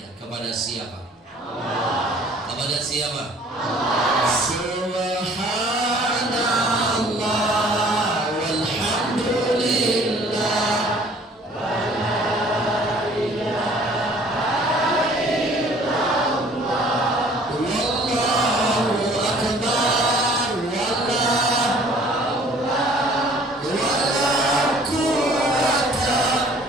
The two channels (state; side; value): normal; both; correlation 0.54